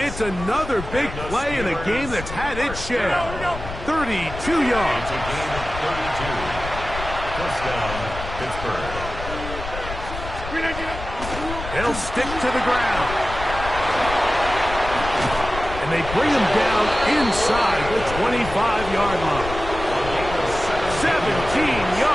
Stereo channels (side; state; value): left; noise; rumble, 9 dB below the sound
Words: another big play in a game that's had its share. 32 yards. It's a gain of 32. Touchdown, Pittsburgh. They'll stick to the ground. And they bring him down inside the 25-yard line. 17